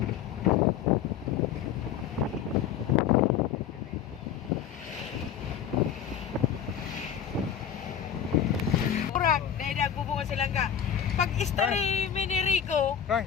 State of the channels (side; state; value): right; quieter; 8.8 dB